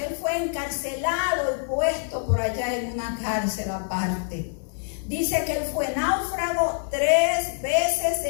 fue encarcelado y puesto por allá en una cárcel aparte. Dice que él fue náufrago 3 veces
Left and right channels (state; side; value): silent; right; digital silence